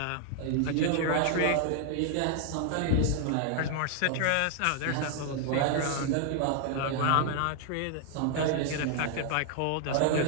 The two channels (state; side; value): different; both; correlation 0.00